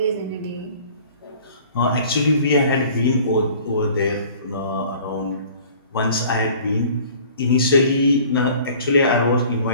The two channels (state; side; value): inverted; both; correlation -0.49